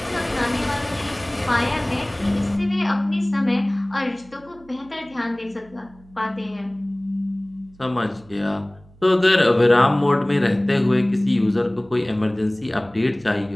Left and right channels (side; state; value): right; noise; hum, 26 dB below the sound